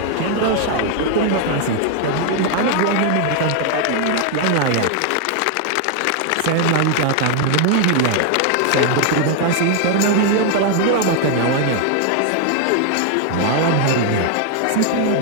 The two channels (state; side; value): different; both; correlation 0.00